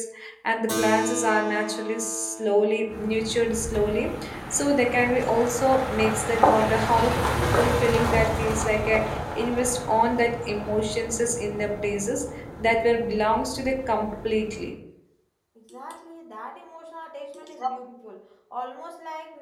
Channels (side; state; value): both; identical; correlation 1.00